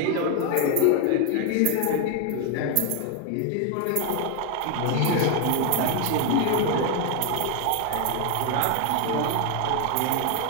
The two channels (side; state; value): both; different; correlation 0.01